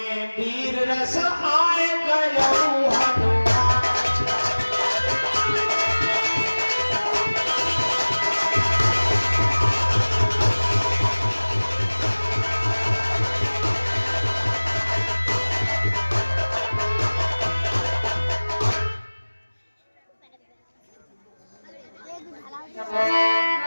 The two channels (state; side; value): inverted; both; correlation -1.00